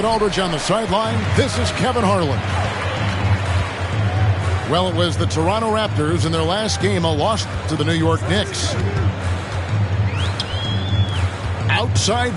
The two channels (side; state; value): both; identical; correlation 1.00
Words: Aldridge on the sideline, this is Kevin Harlan. Well, it was the Toronto Raptors in their last game, a loss to the New York Knicks. Outside